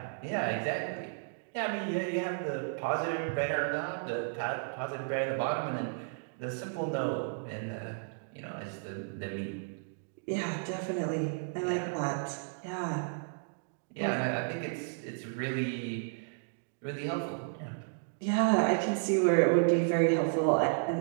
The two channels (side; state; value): left; silent; digital silence